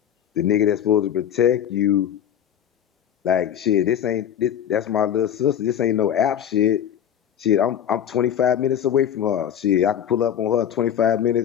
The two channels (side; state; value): right; quieter; 9.6 dB